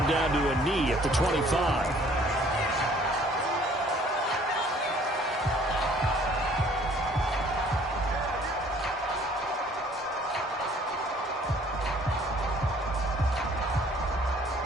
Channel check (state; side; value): normal; both; correlation 0.57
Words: down to a knee at the 25.